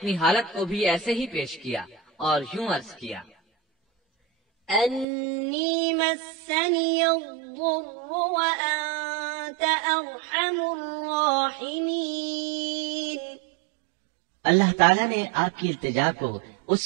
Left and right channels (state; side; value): drops out; left; at 5.1 s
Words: حالت کو بھی ایسے ہی پیش کیا اور یوں عرض کیا، أني مسني الضر وأنت أرحم الراحمين۔ اللہ تعالیٰ نے آپ کی التجا کو